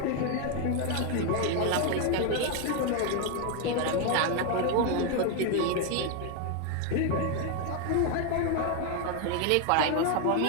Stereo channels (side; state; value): both; different; correlation 0.01